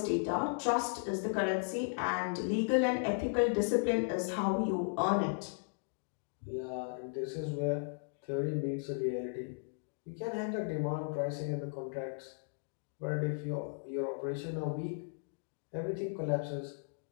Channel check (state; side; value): silent; right; digital silence